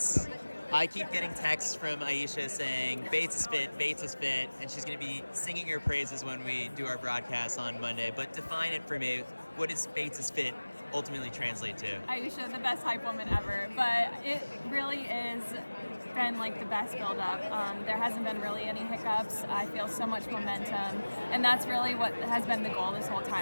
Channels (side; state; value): both; inverted; correlation -1.00